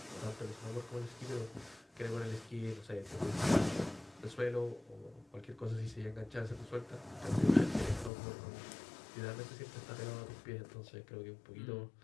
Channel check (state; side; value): drops out; right; at 8.1 s